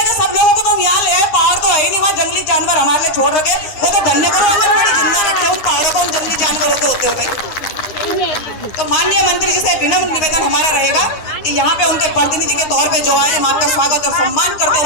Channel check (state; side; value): late; right; 9.9 ms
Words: सब लोगों को तो यहाँ ले आए। पहाड़ तो है ही नहीं, वहाँ जंगली जानवर हमारे लिए छोड़ रखे, वो तो धन्य करो आंगनबाड़ी जिंदा रखे, उन पहाड़ों को, उन जंगली जानवरों के होते हुए। तो माननीय मंत्री जी से विनम्र निवेदन हमारा रहेगा कि यहाँ पे उनके प्रतिनिधि के तौर पे जो आए, हम आपका स्वागत और सम्मान करते